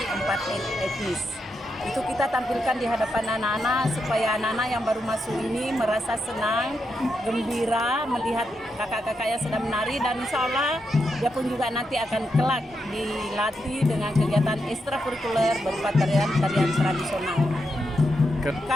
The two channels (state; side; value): normal; both; correlation 0.84